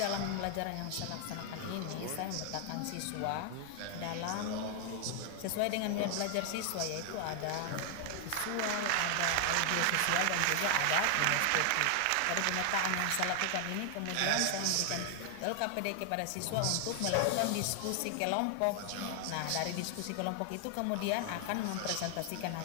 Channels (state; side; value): different; both; correlation 0.00